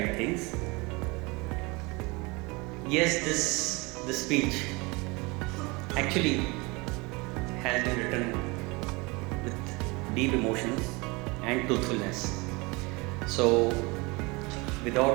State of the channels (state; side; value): quieter; left; 26.0 dB